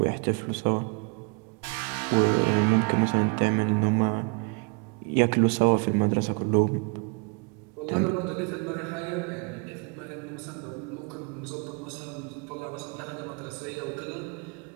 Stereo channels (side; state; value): left; quieter; 33.8 dB